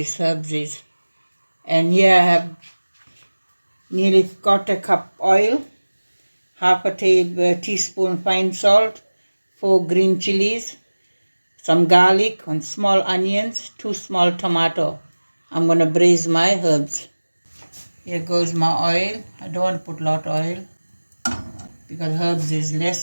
herbs is. And here I have nearly quarter cup oil, half a teaspoon fine salt, 4 green chilies, some garlic and small onions, 2 small tomato. I'm going to braise my herbs. Here goes my oil. I don't want to put a lot of oil because herbs is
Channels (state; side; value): inverted; both; correlation -1.00